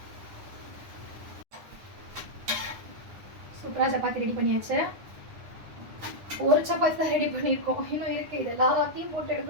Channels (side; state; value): left; late; 9.8 ms